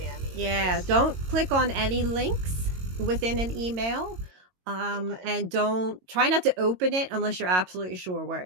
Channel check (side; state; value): left; late; 22 ms